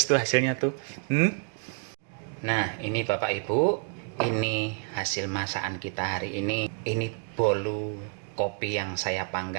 tuh hasilnya tuh. Nah, ini Bapak Ibu, ini hasil masakan kita hari ini. Ini bolu kopi yang saya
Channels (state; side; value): quieter; left; 39.4 dB